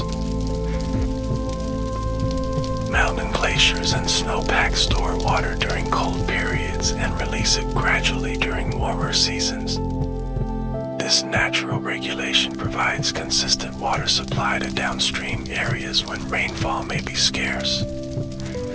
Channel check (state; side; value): identical; both; correlation 1.00